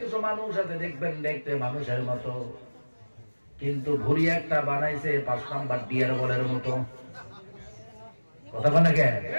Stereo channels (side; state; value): both; inverted; correlation -1.00